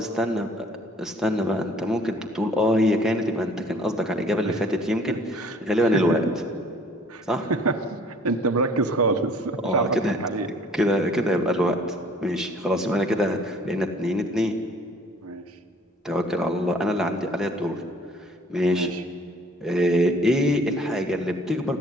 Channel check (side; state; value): both; normal; correlation 0.55